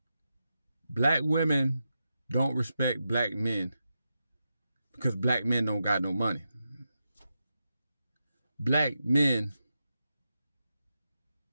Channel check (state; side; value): inverted; both; correlation -0.88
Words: black women don't respect black men because black men don't got no money. Black men